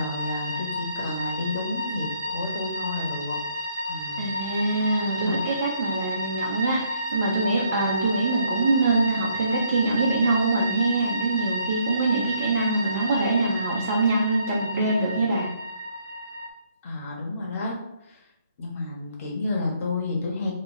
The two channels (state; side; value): inverted; both; correlation -0.68